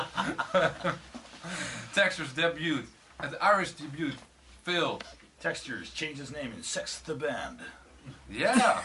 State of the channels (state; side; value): identical; both; correlation 1.00